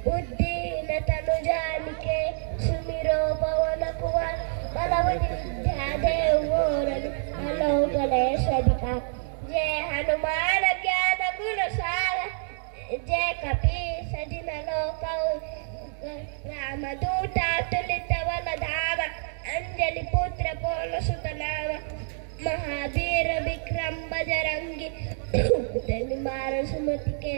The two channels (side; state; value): left; silent; 60 dB below the other